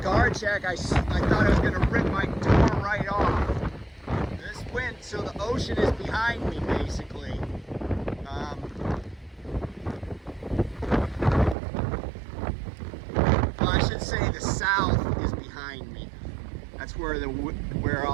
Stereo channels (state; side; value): drops out; left; at 11.6 s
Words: guard check, I thought I was going to rip my door right off. This wind, so the ocean is behind me, basically. Well, I should say the south is behind me. That's where